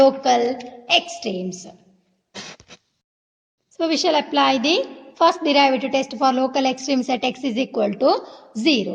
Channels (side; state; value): both; identical; correlation 1.00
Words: extremes. So we shall apply the first derivative test for local extremes at x is equal to